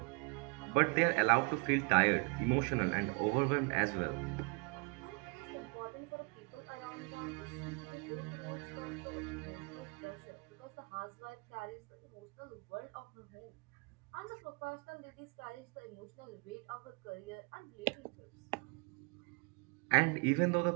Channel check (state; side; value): quieter; left; 32.3 dB